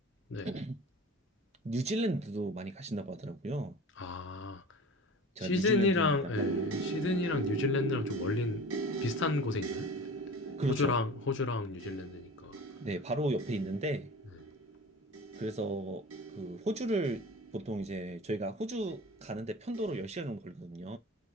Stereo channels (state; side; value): normal; both; correlation 0.38